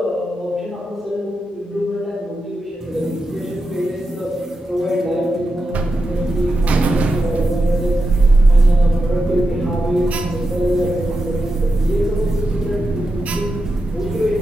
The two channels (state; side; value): normal; both; correlation 0.88